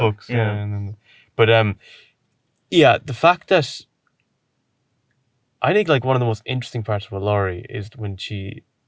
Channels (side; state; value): both; identical; correlation 1.00